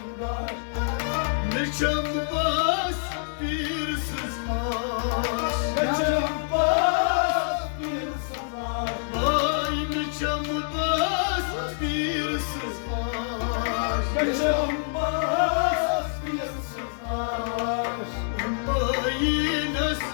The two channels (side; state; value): right; silent; digital silence